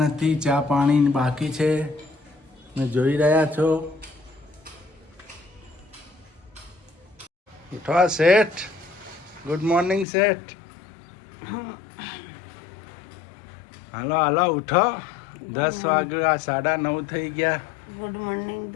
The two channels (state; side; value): drops out; right; at 10.1 s